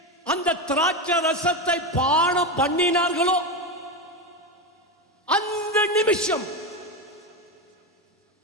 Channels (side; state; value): both; normal; correlation 0.15